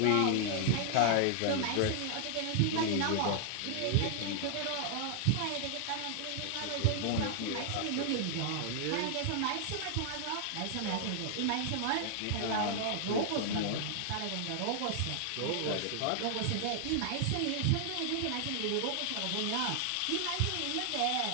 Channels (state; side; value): different; both; correlation 0.00